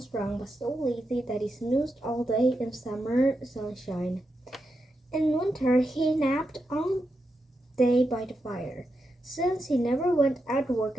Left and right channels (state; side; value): normal; both; correlation 0.86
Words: strong, but so lazy that he snoozed all day in summer sunshine. In winter, he napped all day by the fire. Since he never went out to work